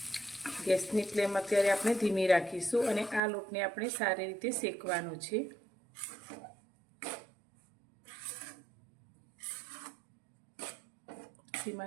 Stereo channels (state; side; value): drops out; left; at 3.2 s